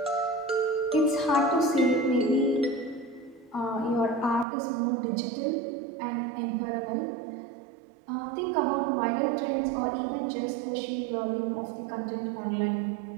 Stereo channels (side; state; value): left; drops out; at 4.5 s